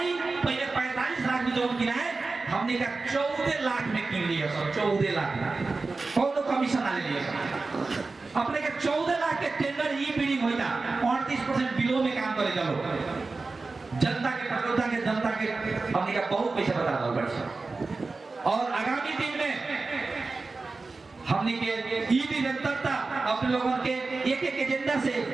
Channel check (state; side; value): quieter; left; 3.8 dB